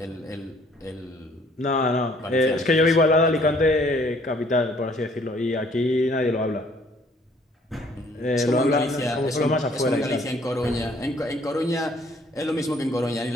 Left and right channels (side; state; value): both; normal; correlation 0.61